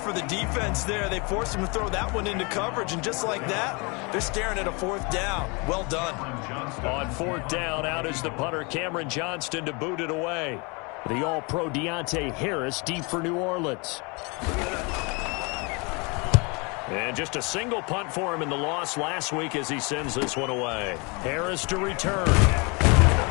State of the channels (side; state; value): right; quieter; 30.1 dB